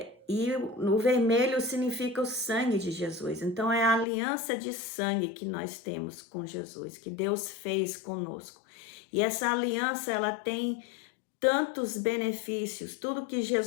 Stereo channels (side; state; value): right; drops out; at 4.0 s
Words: e o vermelho significa o sangue de Jesus. Então é a aliança de sangue que nós temos com Jesus, que Deus fez conosco. E essa aliança, ela tem tantos benefícios, tudo que